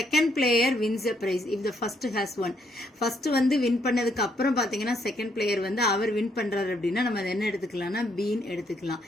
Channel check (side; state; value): both; normal; correlation 0.73